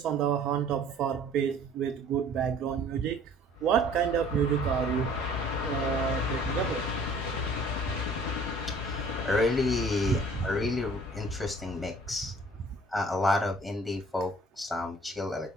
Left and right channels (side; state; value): both; normal; correlation 0.52